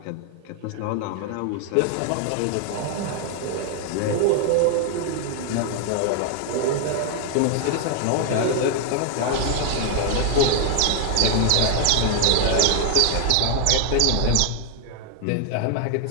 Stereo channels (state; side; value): different; both; correlation 0.00